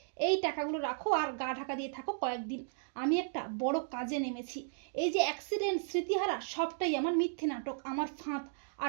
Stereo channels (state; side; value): silent; left; digital silence